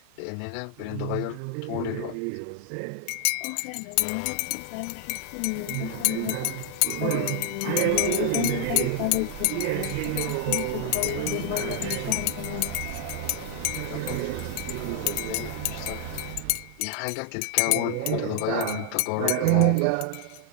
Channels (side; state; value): both; different; correlation 0.00